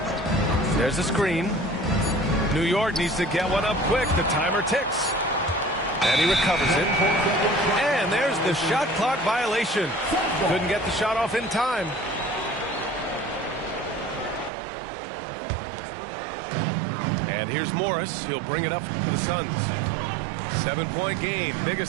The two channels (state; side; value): drops out; left; at 14.5 s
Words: There's a screen. New York needs to get one up quick. The timer ticks. And he recovers it. And there's the shot clock violation. Couldn't get the shot off in time. And here's Morris. He'll bring it up for the Suns. 7-point game.